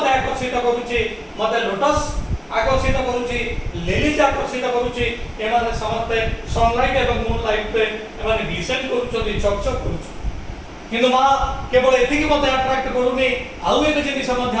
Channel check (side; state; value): both; identical; correlation 1.00